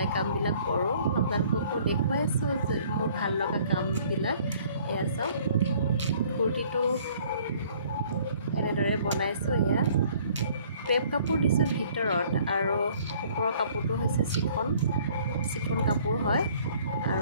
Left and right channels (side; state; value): both; inverted; correlation -0.57